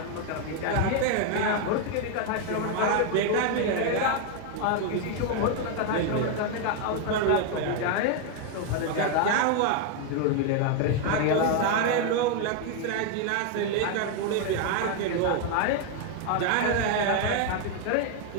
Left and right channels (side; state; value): both; different; correlation 0.01